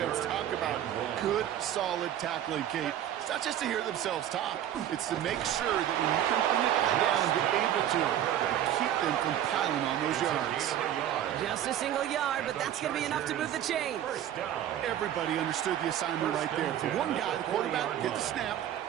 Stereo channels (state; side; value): quieter; left; 11.2 dB